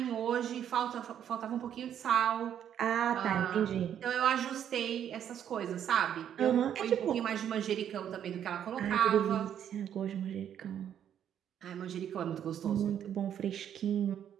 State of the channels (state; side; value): quieter; left; 9.6 dB